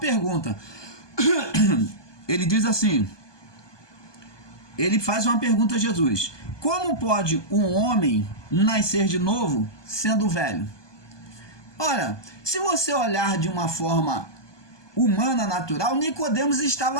Ele diz assim, ele faz uma pergunta a Jesus: como pode um homem nascer de novo sendo velho? Ora, se você olhar de uma forma humana, natural, Nicodemos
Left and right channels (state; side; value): late; right; 1.2 ms